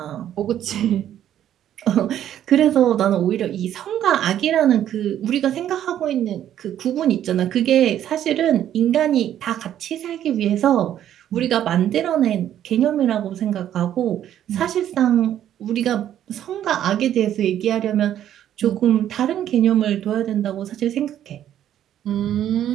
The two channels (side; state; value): left; quieter; 11.0 dB